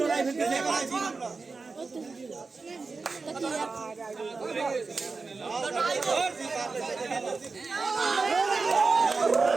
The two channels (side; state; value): left; quieter; 4.2 dB